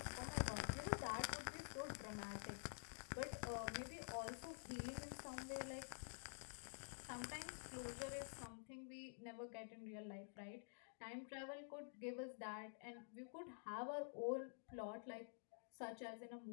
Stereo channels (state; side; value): silent; right; digital silence